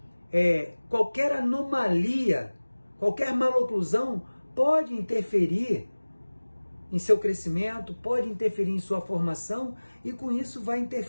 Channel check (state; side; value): inverted; both; correlation -1.00